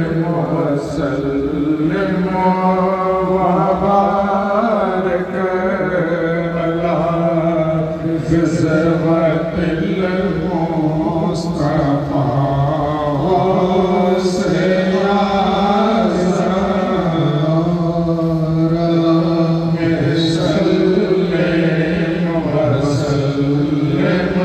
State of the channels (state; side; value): identical; both; correlation 1.00